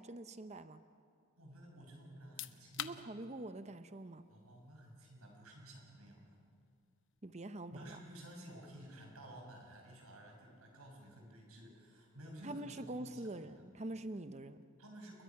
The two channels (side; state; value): both; normal; correlation 0.51